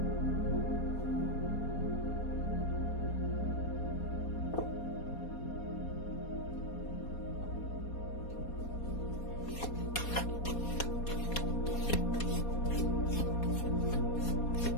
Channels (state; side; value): late; right; 4.2 ms